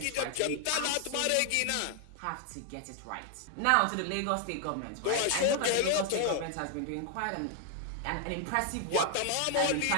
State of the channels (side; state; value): both; different; correlation 0.00